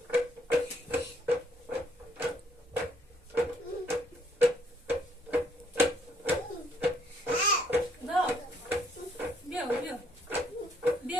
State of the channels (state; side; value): normal; both; correlation 0.67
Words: دا بیا بیا